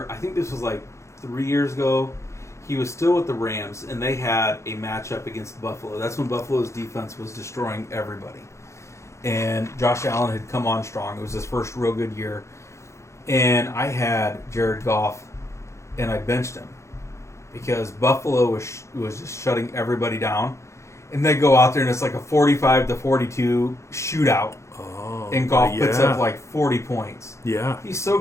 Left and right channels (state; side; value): late; right; 0.14 ms